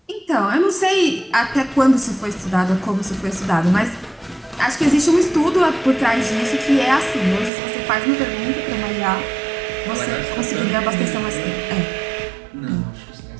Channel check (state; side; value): drops out; left; at 7.5 s